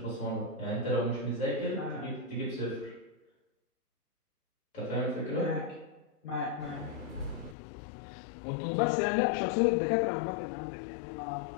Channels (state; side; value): drops out; right; at 7.6 s